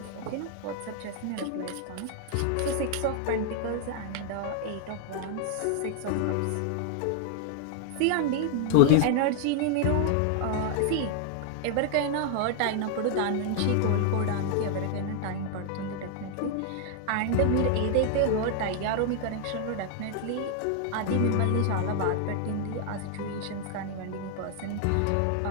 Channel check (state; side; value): different; both; correlation 0.00